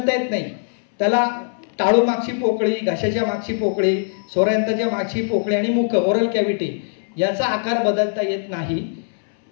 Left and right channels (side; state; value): right; silent; 65 dB below the other